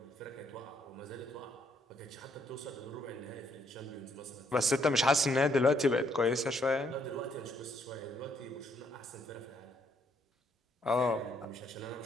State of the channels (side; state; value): both; normal; correlation 0.71